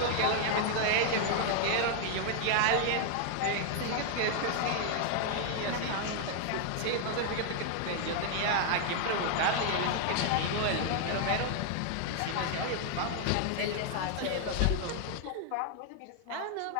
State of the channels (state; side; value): different; both; correlation 0.00